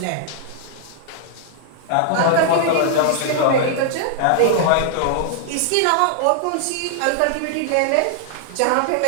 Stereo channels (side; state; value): both; different; correlation 0.00